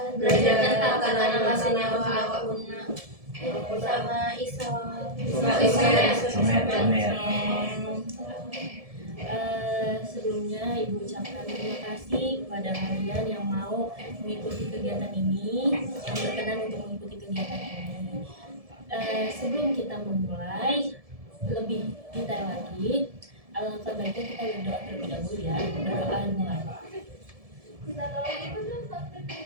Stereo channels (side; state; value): left; late; 1.7 ms